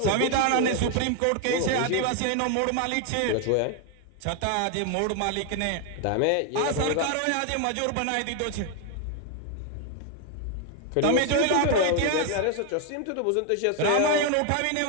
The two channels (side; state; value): both; different; correlation 0.01